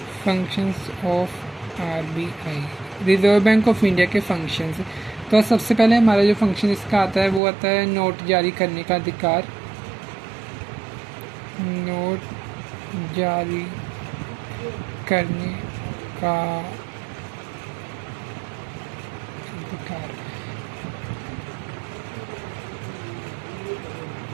Functions of RBI, reserve bank of India के फंक्शंस। तो सबसे पहले हमारा जो फंक्शन इसका आता है वो आता है नोट जारी करने का अधिकार। नोट जारी करने का अधिकार।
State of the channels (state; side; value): drops out; left; at 7.4 s